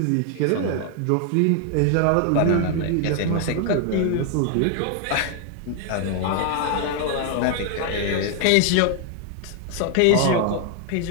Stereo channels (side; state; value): both; different; correlation 0.00